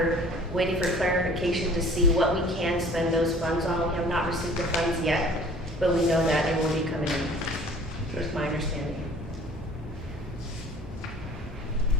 waiting for clarification to see what we can spend those funds on. We have not received the funds yet, but we know that it will be coming in. That's my understanding.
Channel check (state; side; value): normal; both; correlation 0.49